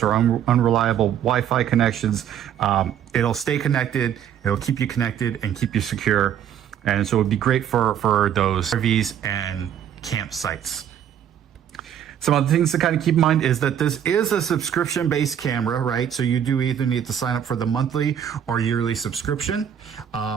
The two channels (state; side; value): quieter; left; 9.5 dB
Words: or unreliable Wi-Fi connections. It'll stay connected. It'll keep you connected and keep you secure. And so it would be great for those RVs and campsites. Some other things to kind of keep in mind is that this is a subscription-based camera, right? So you do either need to sign up for the monthly or yearly subscription.